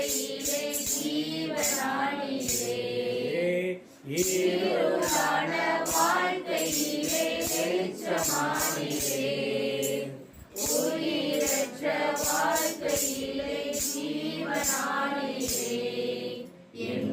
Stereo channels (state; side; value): identical; both; correlation 1.00